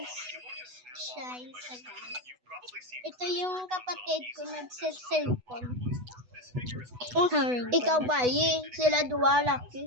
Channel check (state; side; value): late; left; 8.1 ms